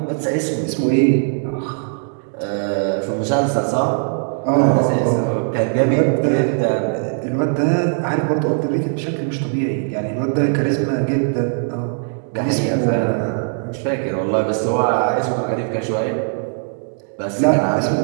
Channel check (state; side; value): silent; left; digital silence